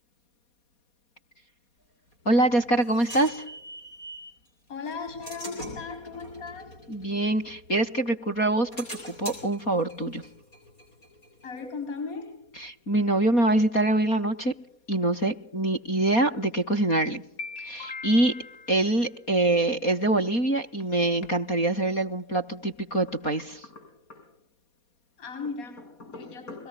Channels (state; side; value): late; right; 4.2 ms